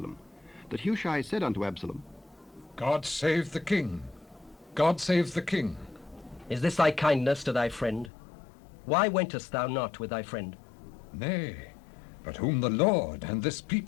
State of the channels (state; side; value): drops out; right; at 8.1 s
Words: that Hushai said unto Absalom, God save the king! God save the king! Is this thy kindness to thy friend? Why wentest thou not with thy friend? Nay, but whom the Lord and this